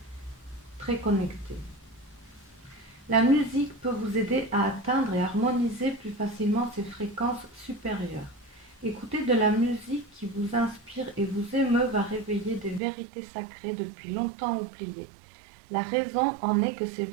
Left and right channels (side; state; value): left; drops out; at 12.8 s